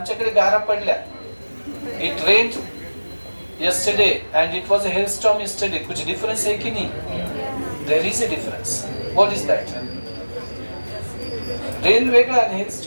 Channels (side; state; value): both; inverted; correlation -1.00